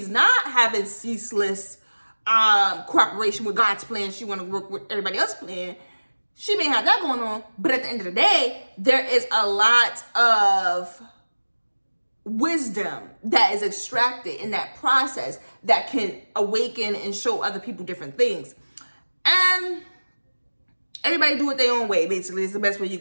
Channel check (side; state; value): both; inverted; correlation -1.00